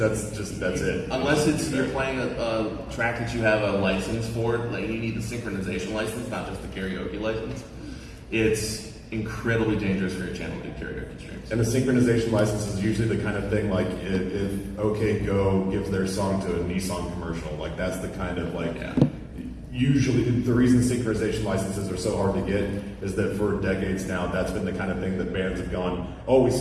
it. Unless you're playing a track that you have a license for, like you need the synchronization license, not just the karaoke license. It's incredibly dangerous for your channel to do karaoke streams. And the synchronization license is usually the kind of thing like if OK Go gives their song to a Nissan commercial, like that's the kind of like. Yeah. Usually, the reason synchronization licenses are so hard to get is that for decades now, that's been the kind of thing that bands have gone, oh, we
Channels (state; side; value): identical; both; correlation 1.00